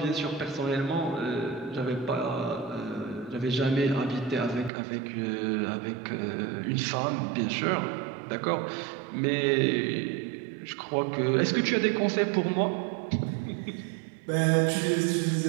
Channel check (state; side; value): drops out; left; at 4.7 s